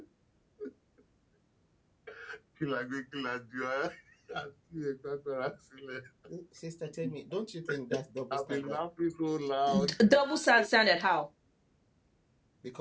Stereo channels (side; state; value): both; identical; correlation 1.00